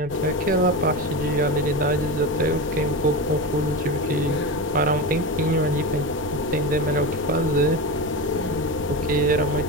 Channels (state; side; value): noise; left; rumble, 19 dB below the sound